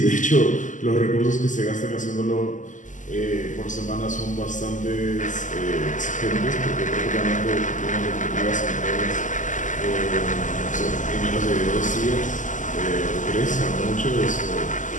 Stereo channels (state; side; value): late; right; 0.37 ms